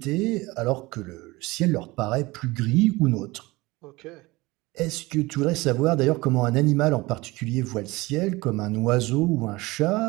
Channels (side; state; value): left; quieter; 21.7 dB